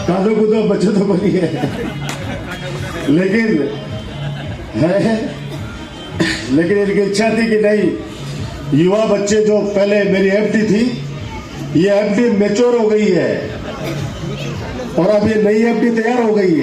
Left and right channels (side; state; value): both; identical; correlation 1.00